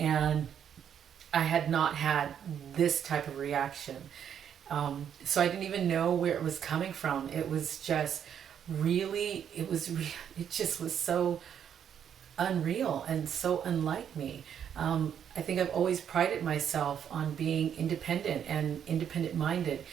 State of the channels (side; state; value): left; quieter; 8.7 dB